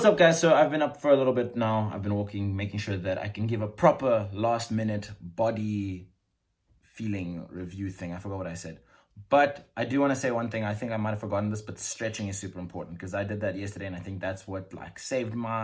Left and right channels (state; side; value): identical; both; correlation 1.00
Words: up guys? So I've been up for a little bit now. I've been walking, making sure that I can give a proper last minute body feeling review thing. I forgot what I said. But I do want to say one thing. I think I might have forgotten this, but stretching is super important, because I did that yesterday, and I think that's what like saved